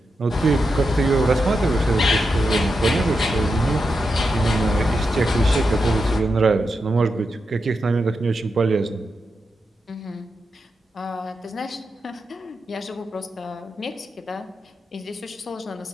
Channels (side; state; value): both; normal; correlation 0.87